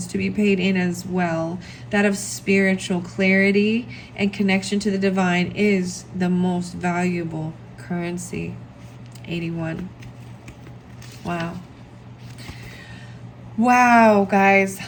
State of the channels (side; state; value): both; identical; correlation 1.00